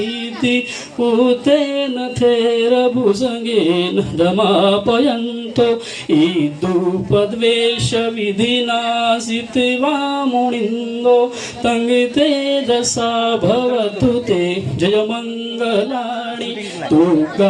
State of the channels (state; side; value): identical; both; correlation 1.00